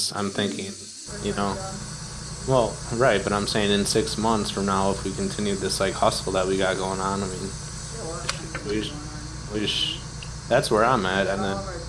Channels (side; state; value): both; identical; correlation 1.00